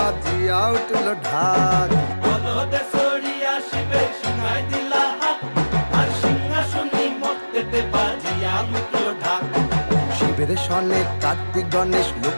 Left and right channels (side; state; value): both; inverted; correlation -1.00